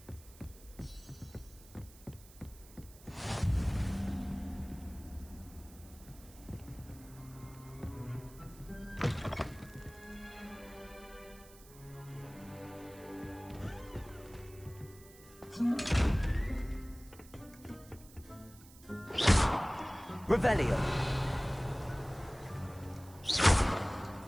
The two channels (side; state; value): right; noise; hiss, 22 dB below the sound